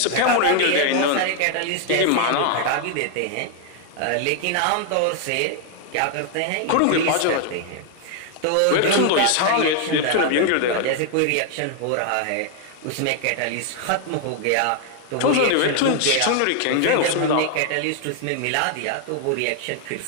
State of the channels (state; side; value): different; both; correlation 0.00